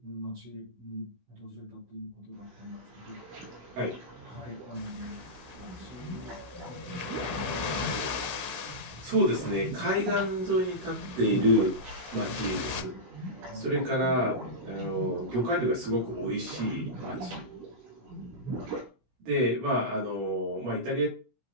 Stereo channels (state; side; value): late; left; 16 ms